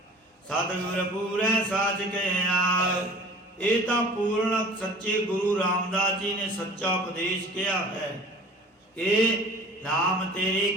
ਸਤਿਗੁਰ ਪੂਰੈ ਸਾਚ ਕਹਿਆ, ਇਹ ਤਾਂ ਪੂਰਨ ਸੱਚੇ ਗੁਰੂ ਰਾਮਦਾਸ ਜੀ ਨੇ ਸੱਚਾ ਉਪਦੇਸ਼ ਕਿਹਾ ਹੈ ਕਿ ਨਾਮ ਤੇਰੇ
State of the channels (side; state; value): both; normal; correlation 0.44